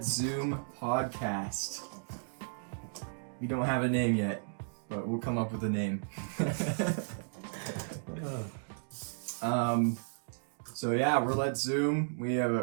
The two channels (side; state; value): left; silent; digital silence